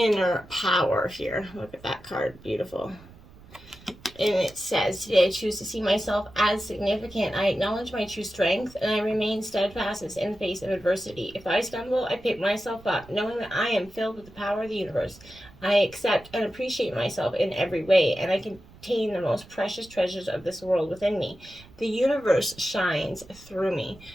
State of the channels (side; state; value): right; noise; rumble, 22 dB below the sound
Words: power here. Look at that card. Beautiful. And it says, today I choose to see myself as significant. I acknowledge my true strength and I remain steadfast in the face of adversity. If I stumble, I pick myself up, knowing that I am filled with the power of the universe. I accept and appreciate myself in every way, and I contain the most precious treasures of this world within me. The universe shines through me.